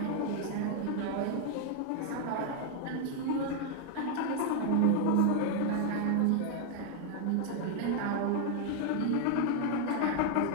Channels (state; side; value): different; both; correlation 0.01